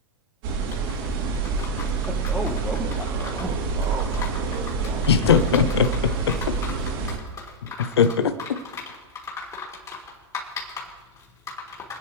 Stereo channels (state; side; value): normal; both; correlation -0.06